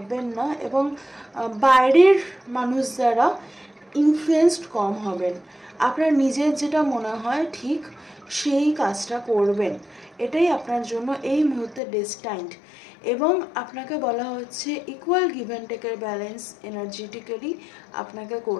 না, এবং বাইরের মানুষ দ্বারা ইনফ্লুয়েসড কম হবেন। আপনার নিজের যেটা মনে হয় ঠিক সেই কাজটা করবেন, এটাই আপনার জন্য এই মুহূর্তে ডেস্টাইন্ড। এবং আপনাকে বলা হচ্ছে ইকুয়াল গিভ অ্যান্ড টেকের ব্যালেন্স এনার্জেটিক্যালি আপনাকে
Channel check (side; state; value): right; drops out; at 11.8 s